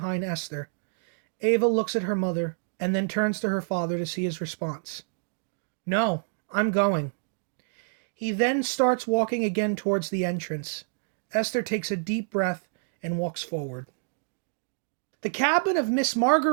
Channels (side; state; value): left; silent; digital silence